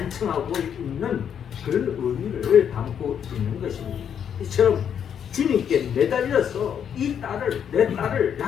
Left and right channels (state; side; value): quieter; right; 8.4 dB